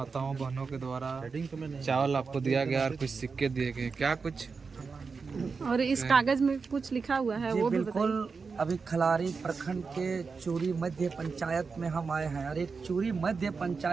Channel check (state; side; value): quieter; left; 4.9 dB